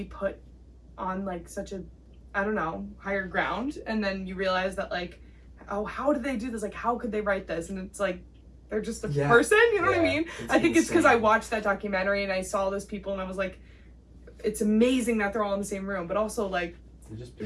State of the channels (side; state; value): both; identical; correlation 1.00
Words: put on like such a, I don't know, higher ground, and then you realize that like, oh, how did they do this? Like, how could they write this? And it's like they're just a person, you know what I mean? I think it's because I watched that documentary and I saw those people and I was like, it's amazing that they're all in the same room, but also like